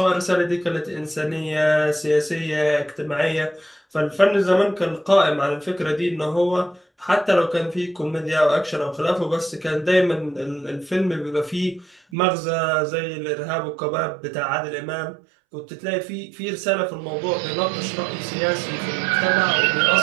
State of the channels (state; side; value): drops out; left; at 12.0 s